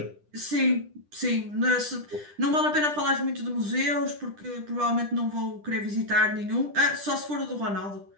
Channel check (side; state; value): left; late; 10 ms